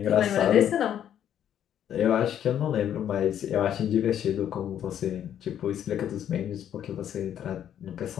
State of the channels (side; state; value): right; quieter; 10.1 dB